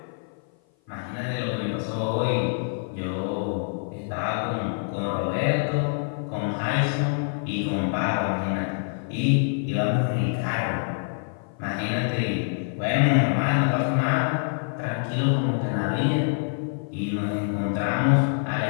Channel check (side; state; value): right; silent; 56 dB below the other